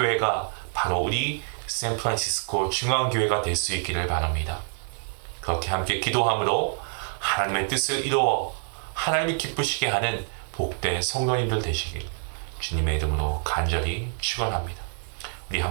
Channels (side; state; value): left; silent; 61 dB below the other